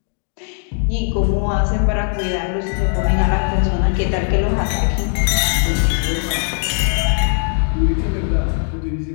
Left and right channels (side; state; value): right; silent; 67 dB below the other